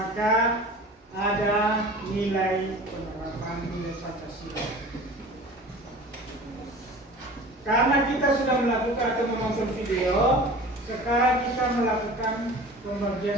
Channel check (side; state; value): both; normal; correlation 0.40